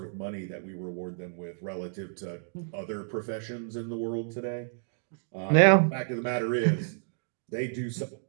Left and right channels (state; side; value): silent; left; digital silence